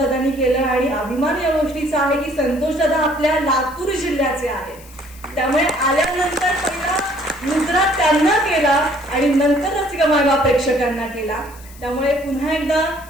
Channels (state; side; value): noise; left; hiss, 22 dB below the sound